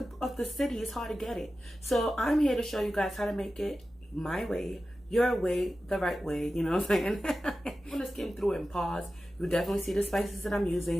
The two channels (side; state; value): both; normal; correlation 0.94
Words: of the city, it's hard to get it. So I'm here to show you guys how to make it my way, your way, the right way. You know what I'm saying? I'm gonna skim through it and pause. You definitely see the spices that I'm